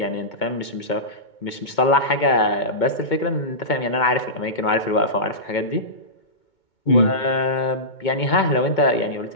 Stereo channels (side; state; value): right; late; 2.2 ms